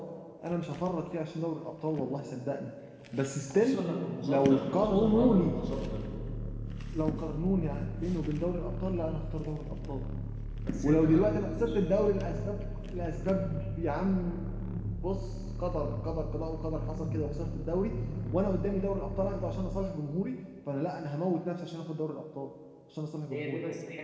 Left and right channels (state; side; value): identical; both; correlation 1.00